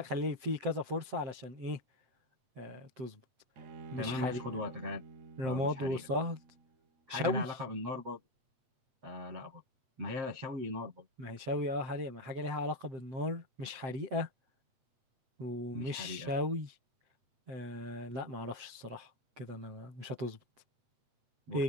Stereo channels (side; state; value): left; late; 7.7 ms